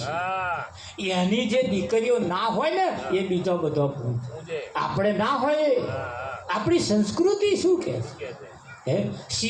છે એની જે દીકરીઓ ના હોય ને એ બીજો બધો આપણે ના હોય આપણી સંસ્કૃતિ શું કહે હે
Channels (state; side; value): identical; both; correlation 1.00